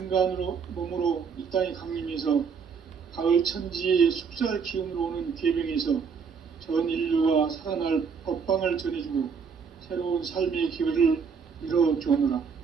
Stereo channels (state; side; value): quieter; left; 6.0 dB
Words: 몸으로 이 땅에 강림해서 가을 천지의 숙살 기운으로 오는 계병에서 전 인류가 살아날 법방을 전해주고 새로운 삶의 기회를 이뤄주오노라.